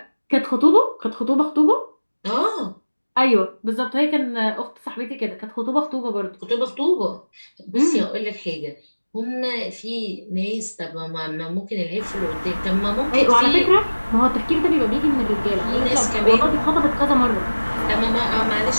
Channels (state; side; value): inverted; both; correlation -1.00